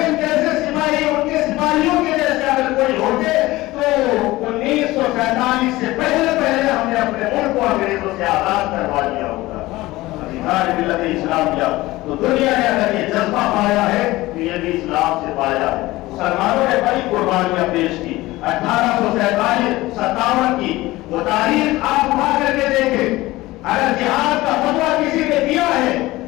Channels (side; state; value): right; quieter; 18.7 dB